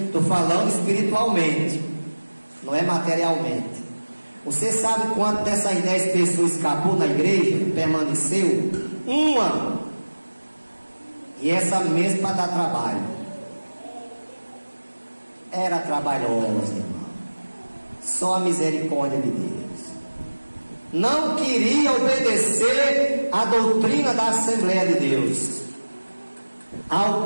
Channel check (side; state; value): both; inverted; correlation -1.00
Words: falando espiritualmente, não é materialmente. Você sabe quanto dessas 10 pessoas escapou na igreja? Permaneceu? Uma. E essa mesma para dar trabalho. Era trabalhosa, irmão. Só a misericórdia de Deus. não queria obedecer à doutrina da Assembleia de Deus, ao